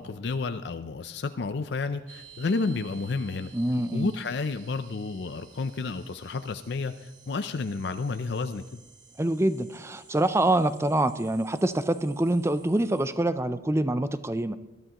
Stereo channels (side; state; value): both; normal; correlation 0.74